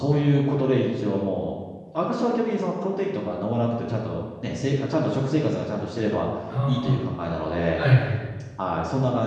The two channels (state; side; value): identical; both; correlation 1.00